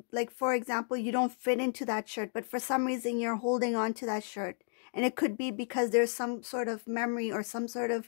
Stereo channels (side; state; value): right; silent; 56 dB below the other